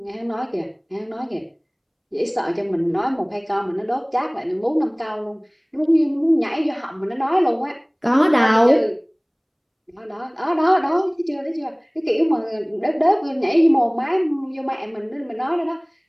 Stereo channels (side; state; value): both; identical; correlation 1.00